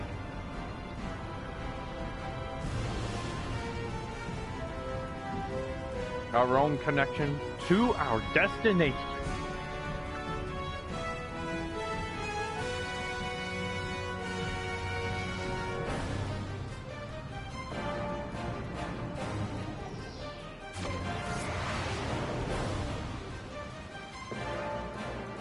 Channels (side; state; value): both; identical; correlation 1.00